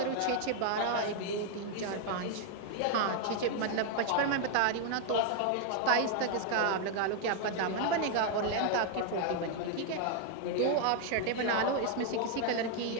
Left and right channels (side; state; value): both; different; correlation 0.00